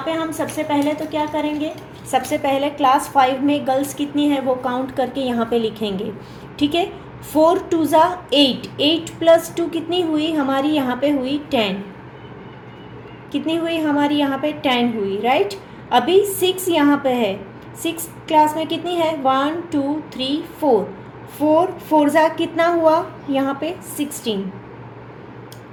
पे हम सबसे पहले तो क्या करेंगे, सबसे पहले क्लास 5 में गर्ल्स कितनी है वो काउंट करके यहाँ पे लिखेंगे, ठीक है। 4 2 ज़ा 8, 8 + 2 कितनी हुई हमारी, यहाँ पे हुई 10, कितनी हुई हमारी यहाँ पे 10 हुई, राइट। अभी 6 यहाँ पे है, 6 क्लास में कितनी है, 1 2 3 4, 4 4 ज़ा कितना हुआ यहाँ पे 16,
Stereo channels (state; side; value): identical; both; correlation 1.00